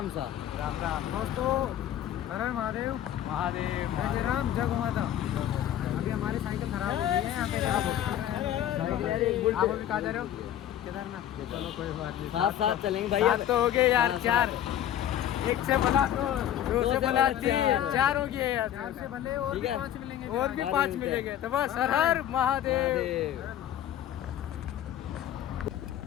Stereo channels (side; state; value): right; quieter; 11.3 dB